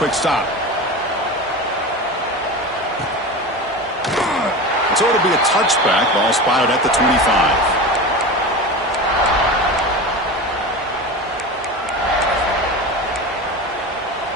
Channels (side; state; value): both; normal; correlation 0.28